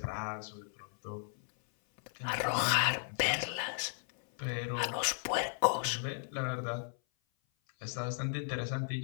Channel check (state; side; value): silent; right; 54 dB below the other